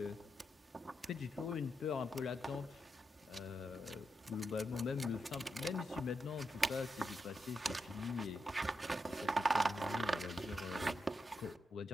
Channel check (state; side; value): normal; both; correlation 0.85